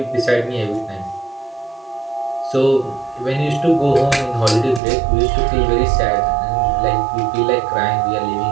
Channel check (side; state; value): left; drops out; at 4.8 s